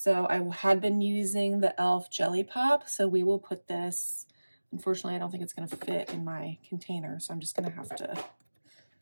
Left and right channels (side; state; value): both; inverted; correlation -1.00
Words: I had been using the e.l.f. Jelly Pop, so we will put this, unfortunately I don't think it's going to fit in my container, so I'm just going to have to